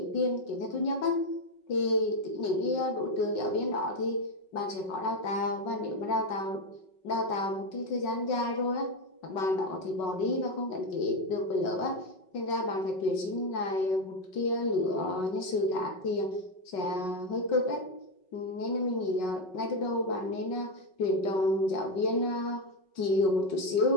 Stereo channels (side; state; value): right; late; 5.4 ms